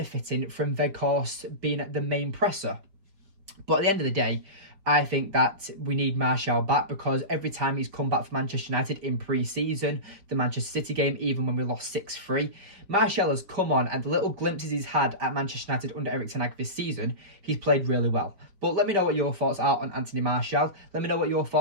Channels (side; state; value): left; late; 5.3 ms